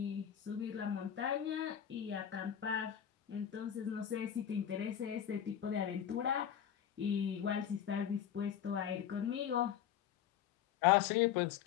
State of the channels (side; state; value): right; quieter; 9.6 dB